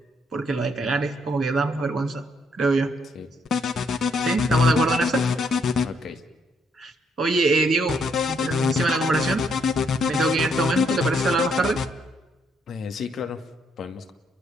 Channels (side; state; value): both; normal; correlation 0.72